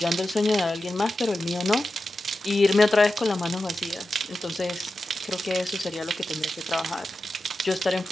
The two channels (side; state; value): both; normal; correlation 0.91